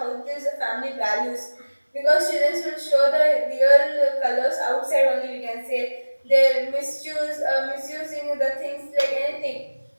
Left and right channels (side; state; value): both; inverted; correlation -1.00